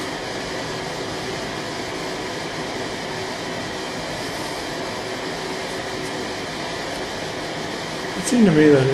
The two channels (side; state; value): both; identical; correlation 1.00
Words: It seemed to me that